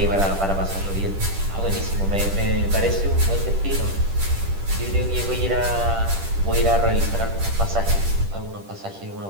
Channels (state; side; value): late; left; 10 ms